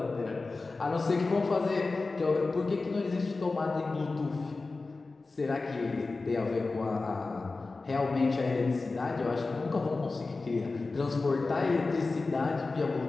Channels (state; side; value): quieter; right; 3.7 dB